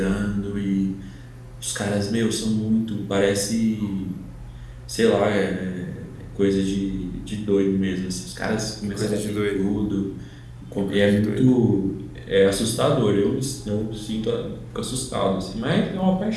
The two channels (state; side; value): identical; both; correlation 1.00